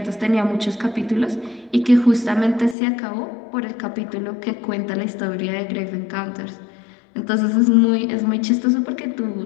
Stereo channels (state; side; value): drops out; right; at 2.8 s